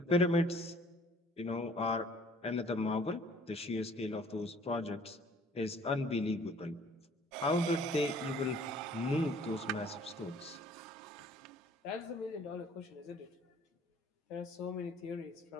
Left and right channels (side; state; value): both; normal; correlation 0.55